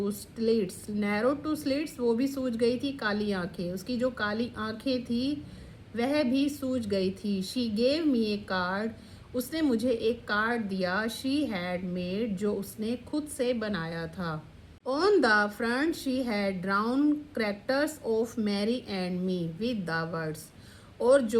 slits, narrow to slits, वो भी सूज गई थी, काली आंखें, उसकी जो काली आंखें थी वह भी सूज गई थी। She gave me A card, उसने मुझे एक कार्ड दिया। शी हैड मेड, जो उसने खुद से बनाया था। On the front she had drawn characters of Mary and me with the words, और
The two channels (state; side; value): identical; both; correlation 1.00